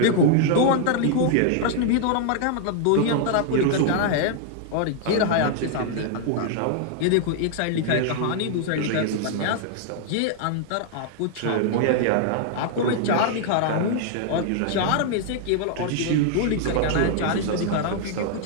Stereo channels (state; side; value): different; both; correlation -0.01